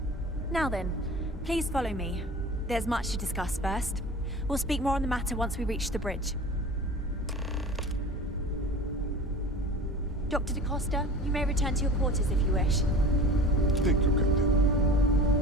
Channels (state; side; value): normal; both; correlation 0.38